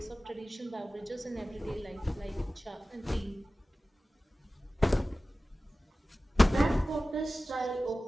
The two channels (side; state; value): both; normal; correlation 0.96